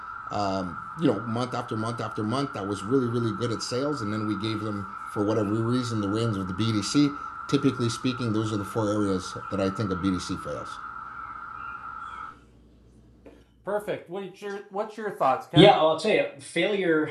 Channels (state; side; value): identical; both; correlation 1.00